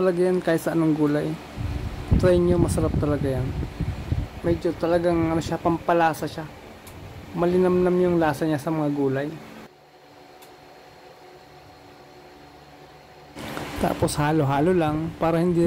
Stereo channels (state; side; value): identical; both; correlation 1.00